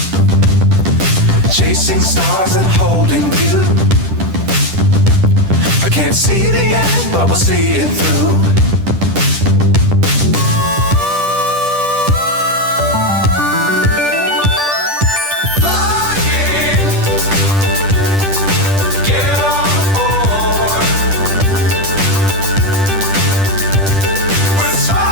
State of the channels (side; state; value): left; late; 10 ms